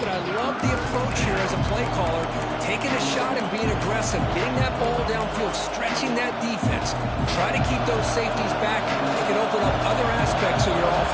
I love the approach here as a play caller. Taking a shot and being aggressive, getting that ball downfield, stretching that defense. Try to keep those safeties back. It can open up other aspects of your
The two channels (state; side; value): identical; both; correlation 1.00